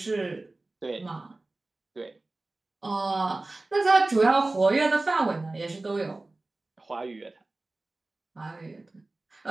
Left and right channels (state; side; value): quieter; left; 3.1 dB